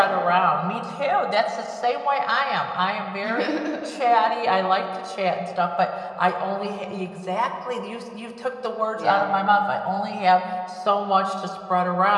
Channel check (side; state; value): both; identical; correlation 1.00